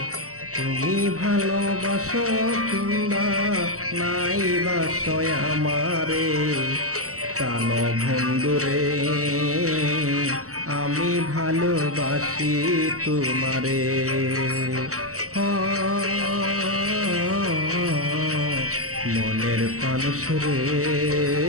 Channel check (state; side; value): late; left; 0.65 ms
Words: তুমি ভালোবাসো কিংবা নাই বাসো আমারে, প্রাণ বন্ধুরে আমি ভালোবাসি তোমারে। মনের মানুষ রে